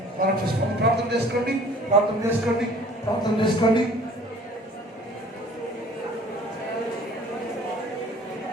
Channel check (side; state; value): both; normal; correlation 0.51